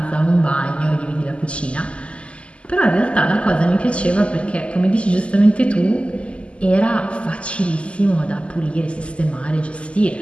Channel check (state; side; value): late; right; 0.056 ms